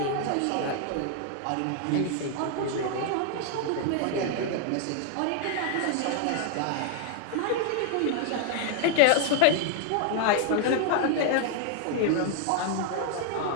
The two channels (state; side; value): different; both; correlation 0.00